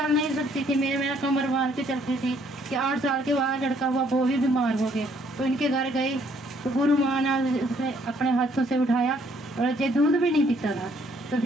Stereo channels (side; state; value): both; normal; correlation 0.65